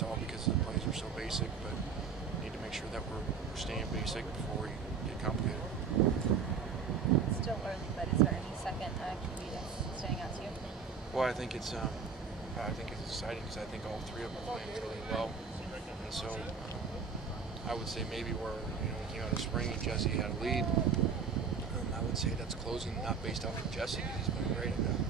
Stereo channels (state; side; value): quieter; left; 5.8 dB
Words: because the plays are so basic, but we need to make sure that we're staying basic before we get complicated. Still early, but is there any second QB that's standing out to you? Well, I think it's exciting because I think all three of them are playing really well, and so I would say maybe where we came out of spring and Jesse had a lead. I would say that's closing, not based off of Jesse, because he's been great,